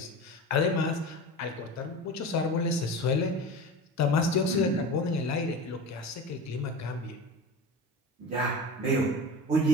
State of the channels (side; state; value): both; normal; correlation 0.30